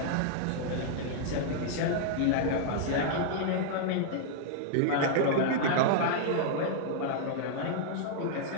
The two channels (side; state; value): both; different; correlation -0.01